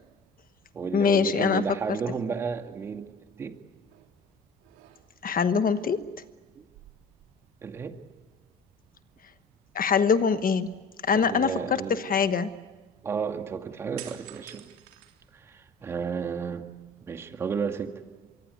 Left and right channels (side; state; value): right; quieter; 3.2 dB